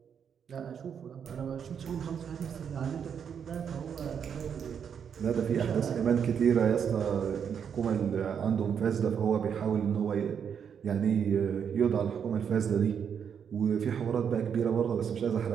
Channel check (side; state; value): left; quieter; 7.6 dB